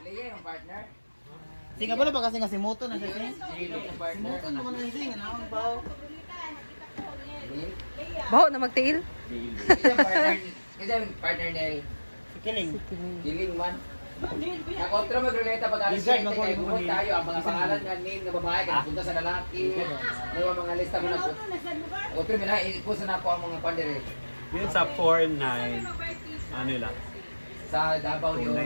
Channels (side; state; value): both; inverted; correlation -1.00